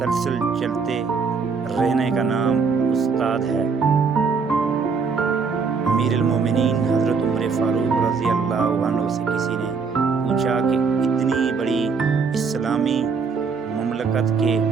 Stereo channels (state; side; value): quieter; left; 5.2 dB